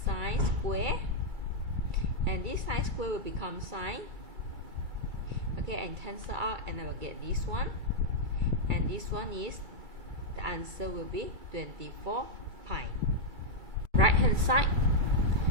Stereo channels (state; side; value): late; left; 2.3 ms